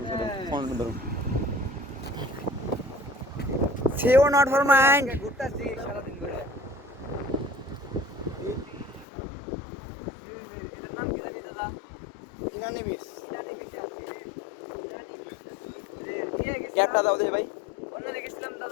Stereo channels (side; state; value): right; drops out; at 9.1 s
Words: নেই। ফোন ধরো। সেও নট ফর মাইন্ড। ক্যাপটা দাও দে ভাই।